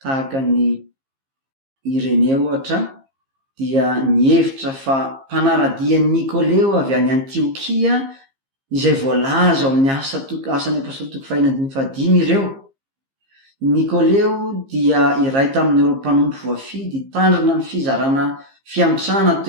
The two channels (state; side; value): late; left; 15 ms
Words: ny Ireneo ohatra, dia nihevitra fa mpanaradian'i Nikoleo avy any Antiokia izay voalaza ao amin'ny asan'ny apôstôly 5:5 ireo. Nikoleo dia iray tamin'ireo mpanompo voafidy tandrina ny fizarana fiantrana